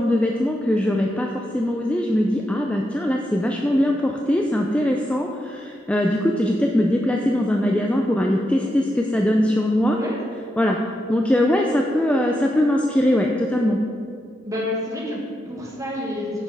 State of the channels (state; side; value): normal; both; correlation 0.85